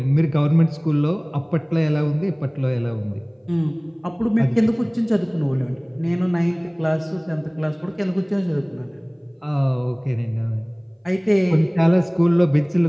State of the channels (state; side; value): identical; both; correlation 1.00